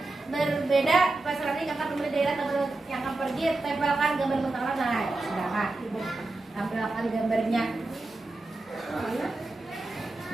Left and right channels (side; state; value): left; quieter; 3.1 dB